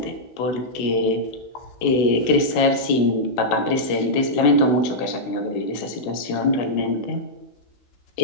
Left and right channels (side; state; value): right; late; 16 ms